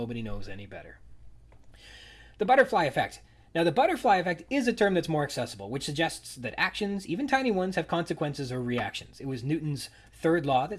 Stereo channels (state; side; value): identical; both; correlation 1.00